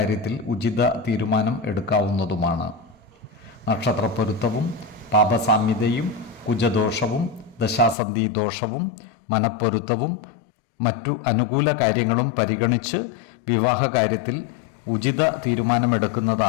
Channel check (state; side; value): drops out; right; at 8.0 s